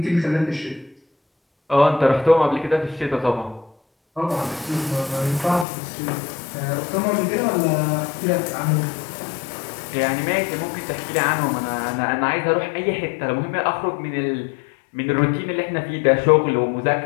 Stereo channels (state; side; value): drops out; right; at 5.7 s